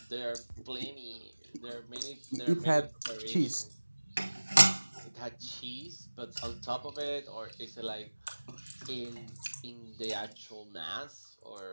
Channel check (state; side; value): inverted; both; correlation -1.00